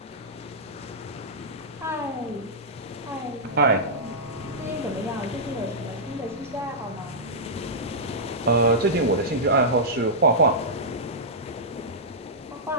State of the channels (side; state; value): both; normal; correlation -0.13